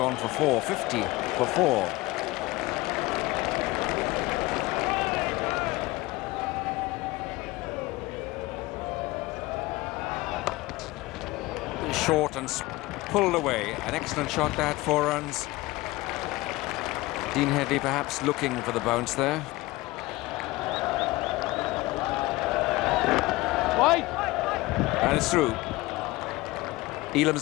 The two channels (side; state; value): right; quieter; 20.4 dB